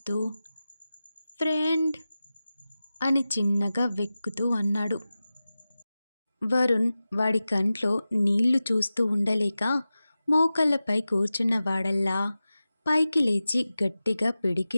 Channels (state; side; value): inverted; both; correlation -0.95